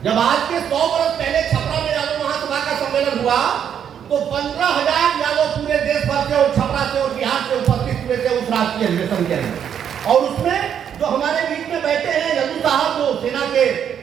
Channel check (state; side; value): quieter; left; 8.7 dB